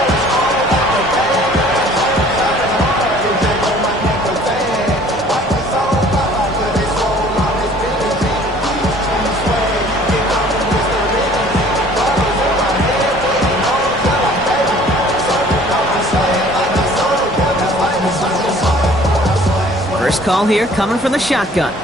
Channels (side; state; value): both; normal; correlation 0.52